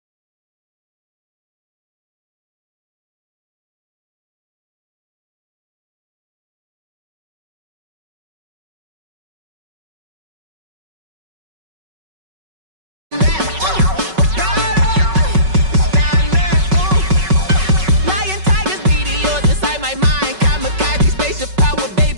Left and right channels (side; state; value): left; late; 5.3 ms